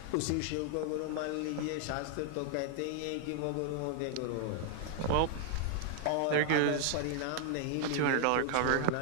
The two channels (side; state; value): both; different; correlation 0.00